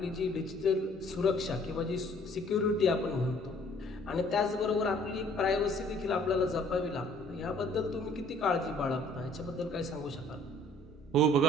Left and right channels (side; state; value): both; normal; correlation 0.57